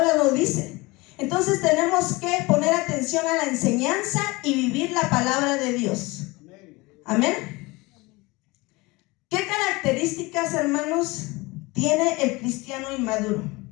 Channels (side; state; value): right; quieter; 23.3 dB